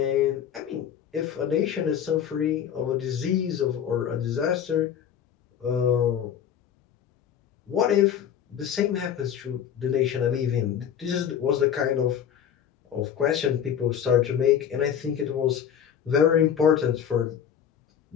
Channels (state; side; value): quieter; right; 9.0 dB